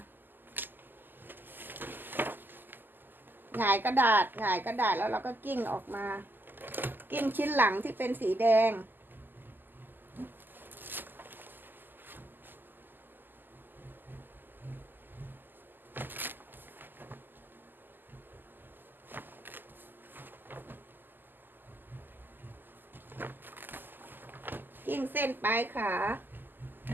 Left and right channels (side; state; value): left; late; 0.091 ms